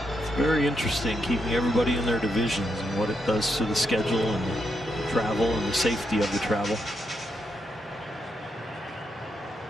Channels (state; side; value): normal; both; correlation 0.81